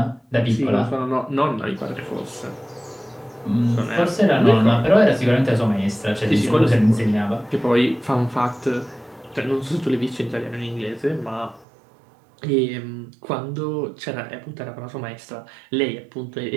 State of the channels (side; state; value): left; drops out; at 11.7 s